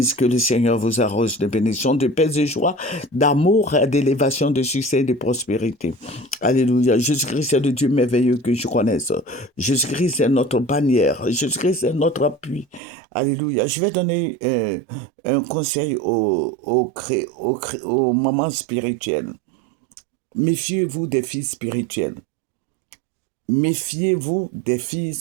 que le Seigneur vous arrose de bénédictions, de paix et joie, d'amour, d'élévation, de succès et de prospérité. Alléluia. Jésus-Christ est le Dieu merveilleux que je connaisse. Jésus-Christ est notre bannière. Jésus-Christ est notre appui. Alléluia. Je vais donner un conseil aux mamans spirituelles. Méfiez-vous des filles spirituelles. Méfiez-vous des filles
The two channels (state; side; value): drops out; left; at 12.8 s